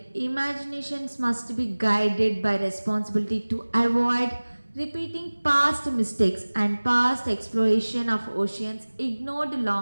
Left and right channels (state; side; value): inverted; both; correlation -1.00